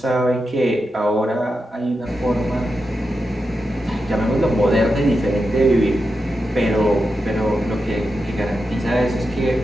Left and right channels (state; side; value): normal; both; correlation 0.88